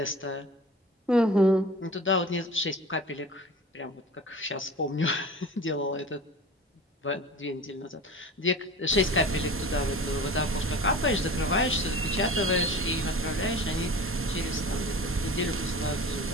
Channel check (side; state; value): both; normal; correlation 0.37